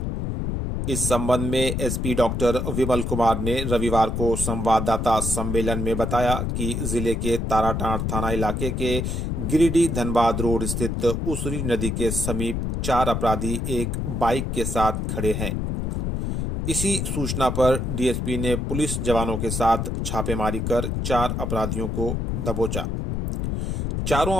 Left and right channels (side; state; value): left; noise; rumble, 2 dB below the sound